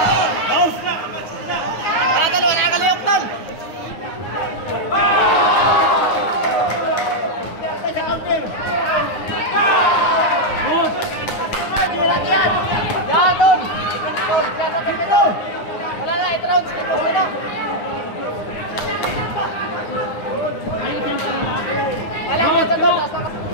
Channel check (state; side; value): late; right; 9.6 ms